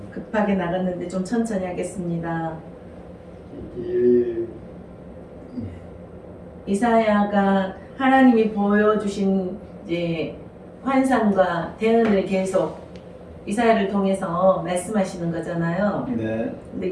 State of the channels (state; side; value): identical; both; correlation 1.00